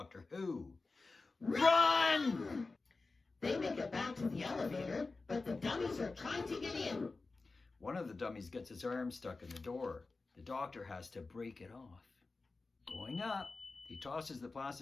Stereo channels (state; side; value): quieter; right; 3.7 dB